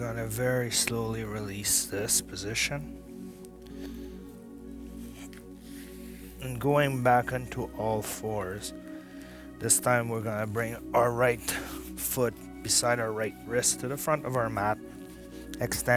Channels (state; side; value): identical; both; correlation 1.00